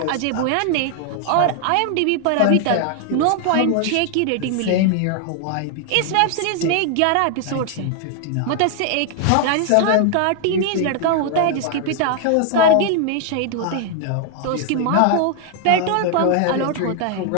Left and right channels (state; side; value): different; both; correlation 0.00